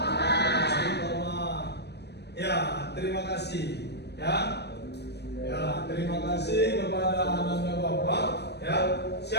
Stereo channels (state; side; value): late; right; 0.49 ms